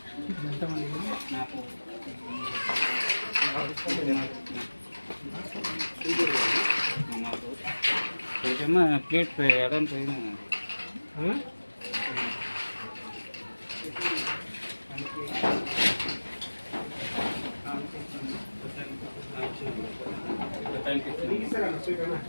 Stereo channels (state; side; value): inverted; both; correlation -1.00